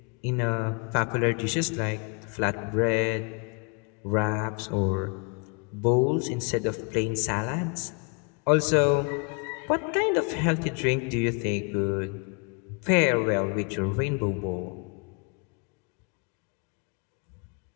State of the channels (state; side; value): quieter; right; 35.4 dB